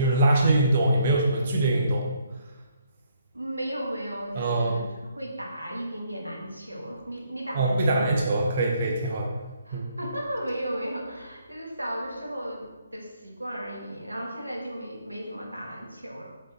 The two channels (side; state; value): both; inverted; correlation -0.70